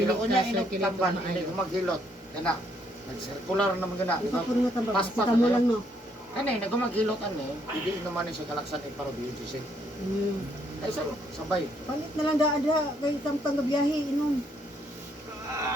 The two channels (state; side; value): normal; both; correlation 0.71